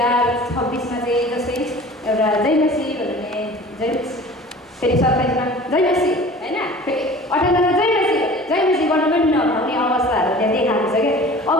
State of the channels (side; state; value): both; normal; correlation 0.43